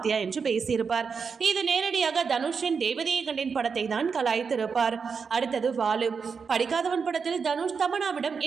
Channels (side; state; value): left; quieter; 5.7 dB